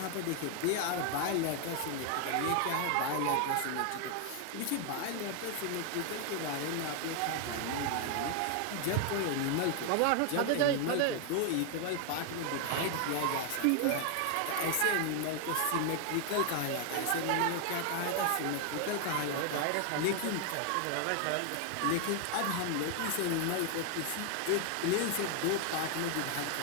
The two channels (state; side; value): different; both; correlation 0.00